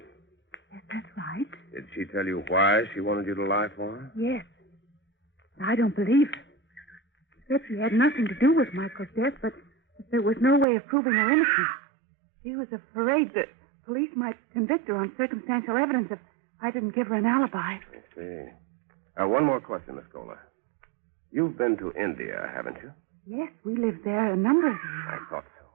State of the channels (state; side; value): drops out; left; at 10.7 s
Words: Yes, that's right. Did she tell you why she wanted you to lie for her? Yes. I don't believe her. She said she had nothing to do with Michael's death, but there was no way of proving her innocence. She was afraid that police might convict her on circumstantial evidence if I didn't give her an alibi. I see. One more question, Miss Kohler. You've been to India, haven't you? Yes, we lived there a number of years. I thought so.